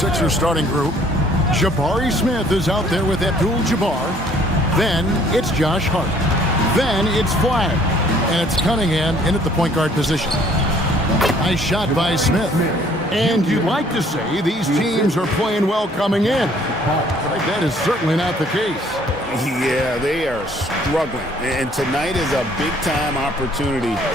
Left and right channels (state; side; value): normal; both; correlation 0.59